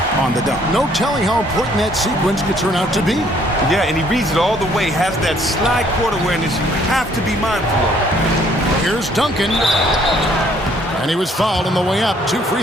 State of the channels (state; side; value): normal; both; correlation 0.63